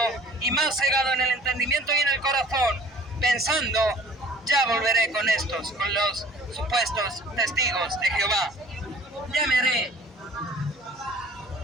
y más cegado en el entendimiento y en el corazón, pensando, ya volveré con estos, con los supuestos testigos de Jehová. Ya me haré,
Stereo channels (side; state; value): both; normal; correlation 0.49